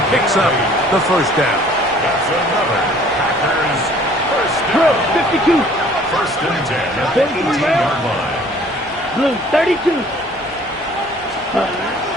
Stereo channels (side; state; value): both; normal; correlation 0.54